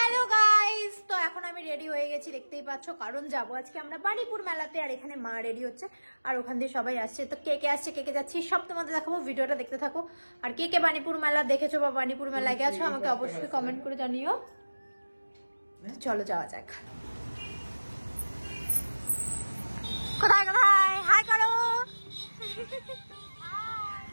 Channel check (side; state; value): both; inverted; correlation -1.00